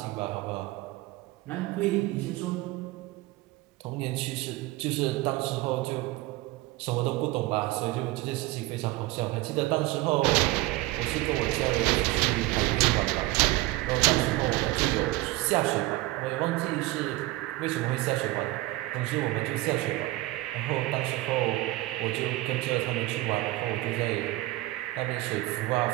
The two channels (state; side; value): quieter; left; 19.0 dB